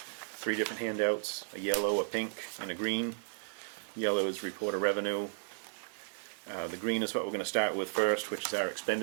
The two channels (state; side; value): silent; left; digital silence